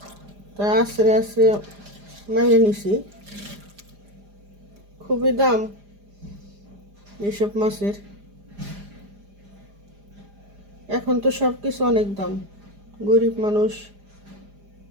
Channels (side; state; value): left; late; 4.9 ms